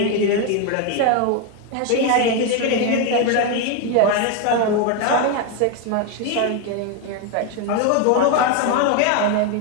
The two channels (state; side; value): different; both; correlation 0.02